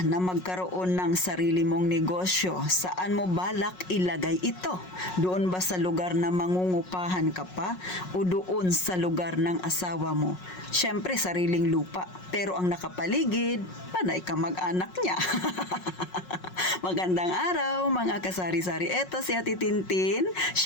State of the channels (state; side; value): late; right; 5.5 ms